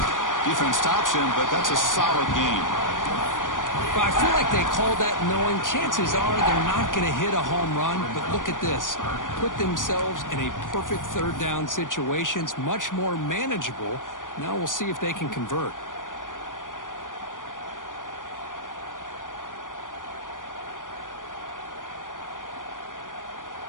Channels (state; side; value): late; right; 0.88 ms